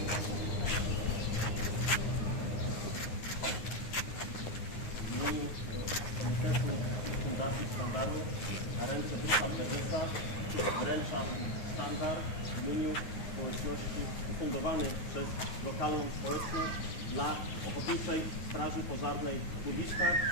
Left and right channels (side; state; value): right; late; 9.6 ms